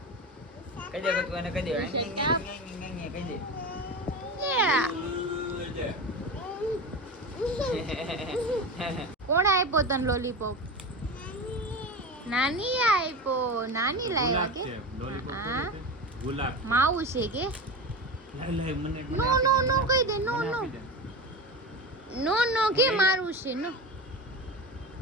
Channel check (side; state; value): both; normal; correlation 0.25